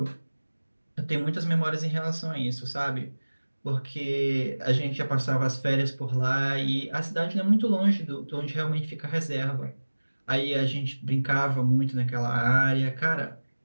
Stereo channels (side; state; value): both; inverted; correlation -1.00